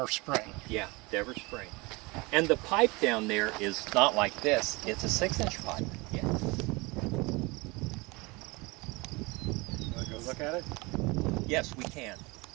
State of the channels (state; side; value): quieter; left; 25.3 dB